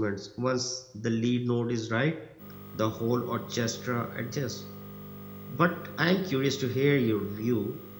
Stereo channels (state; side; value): identical; both; correlation 1.00